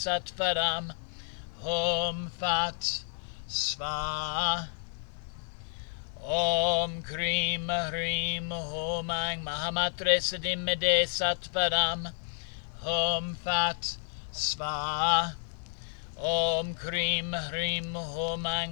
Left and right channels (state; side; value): silent; right; 57 dB below the other